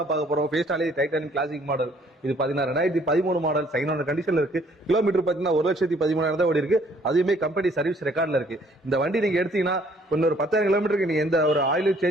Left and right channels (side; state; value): both; normal; correlation 0.61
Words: பார்க்க போறோம். ஃபியஸ்டாலே டைட்டானிக் கிளாசிக் மாடல். இது பாத்தீங்கன்னா 2013 மாடல் சைனான கண்டிஷன்ல இருக்கு. கிலோமீட்டர் பாத்தீங்கன்னா 1,13,000 தான் ஓடி இருக்கு. அதுவுமே கம்பெனி சர்வீஸ் ரெக்கார்ட்ல இருக்கு. இந்த வண்டி நீங்க எடுத்தீங்கன்னா இன்னொரு 10,000 கிலோமீட்டருக்கு நீங்க எந்த ஒரு ஆயிலும்